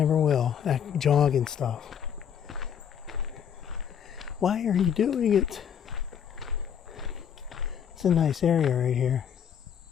will. That jogging stuff. Why are you doing it? It's a nice area right here.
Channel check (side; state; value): right; quieter; 8.2 dB